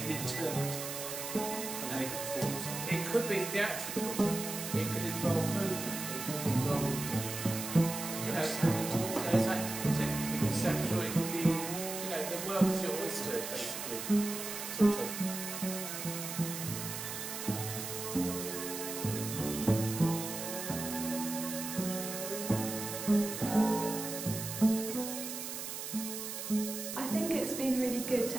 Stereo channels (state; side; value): noise; right; hiss, 6 dB below the sound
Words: interpret and make a performance. It could be theatrical, it could involve movement, it could involve conceptual, it could be, the work is your oyster, basically. Sort of. Good to